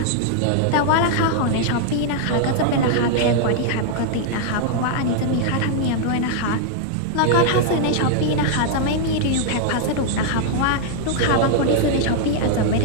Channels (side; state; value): both; different; correlation 0.00